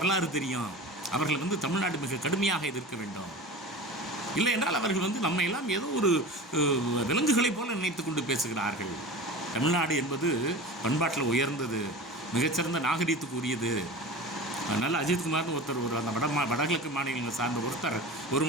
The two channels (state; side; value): normal; both; correlation 0.33